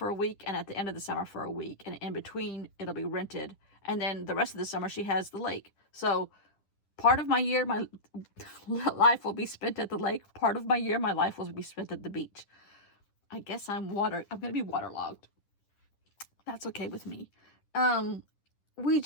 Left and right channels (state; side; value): late; right; 10 ms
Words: a week and at the end of the summer for a week. And in between, it'll be rented. And then the rest of the summer, she has the lake. So part of my year, my life will be spent at the lake. Part of my year, my life will be spent at the beach. I guess I'm going to be waterlogged. That's okay with me.